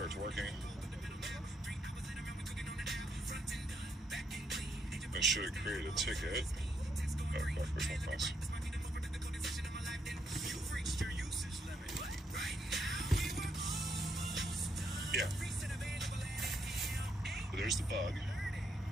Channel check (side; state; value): both; normal; correlation 0.76